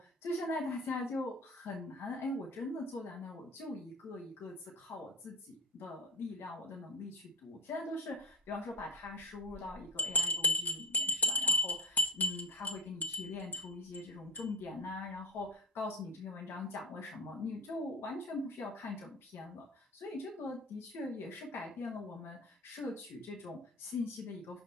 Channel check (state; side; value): normal; both; correlation 0.23